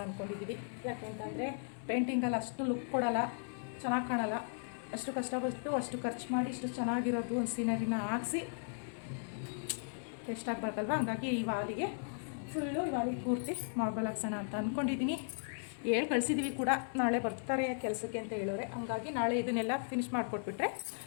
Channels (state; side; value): silent; right; 53 dB below the other